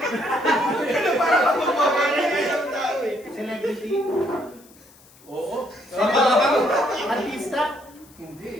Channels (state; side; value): noise; left; hiss, 26 dB below the sound